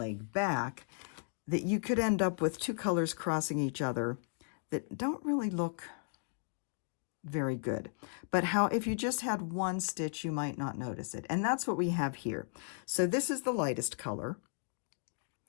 back, that you could end up with two colors crossing each other that don't really look very good. But how if you just had one stitch, you might not notice it. And that's what we have here. So this is the lightest color.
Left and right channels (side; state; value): right; silent; 54 dB below the other